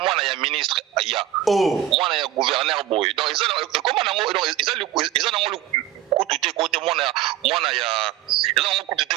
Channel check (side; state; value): left; quieter; 12.2 dB